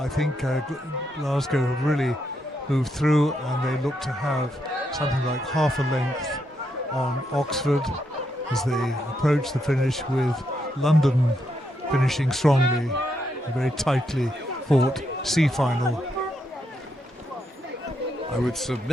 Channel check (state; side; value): normal; both; correlation 0.80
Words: think Glasgow have really moved through, and they look to have something like half a length on Oxford as they approach the finish, with London finishing strongly, a very tightly fought C final. I would